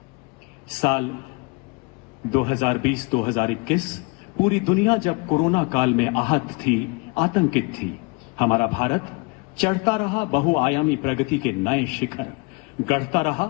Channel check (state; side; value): quieter; right; 29.4 dB